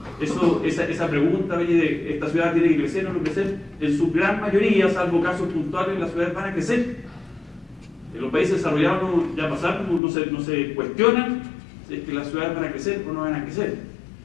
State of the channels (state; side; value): drops out; right; at 10.0 s